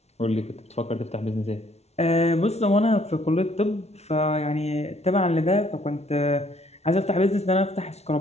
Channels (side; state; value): right; late; 0.31 ms